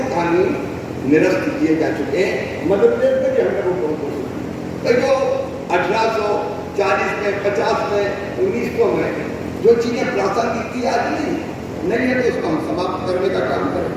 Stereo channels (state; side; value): identical; both; correlation 1.00